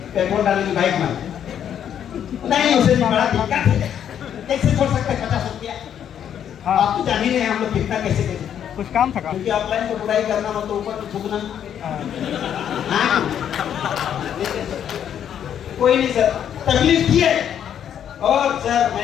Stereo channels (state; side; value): quieter; right; 9.3 dB